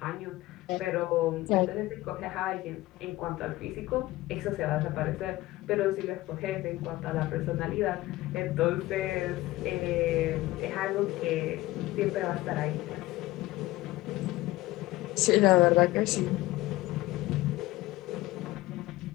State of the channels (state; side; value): quieter; right; 18.2 dB